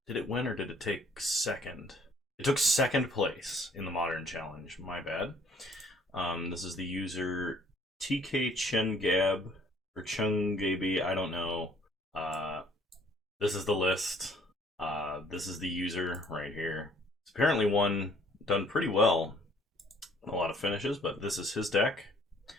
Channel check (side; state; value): both; normal; correlation 0.60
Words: Did it win or did it take second? It took second place in the Modern challenge. My bad. This is the user TK Chengab or Chungaby. I don't know. This is the list. This is the user right here. It's apparently done pretty well. A lot of finishes, but this is his deck.